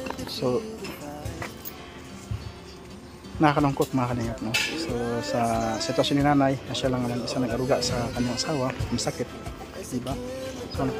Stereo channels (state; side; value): identical; both; correlation 1.00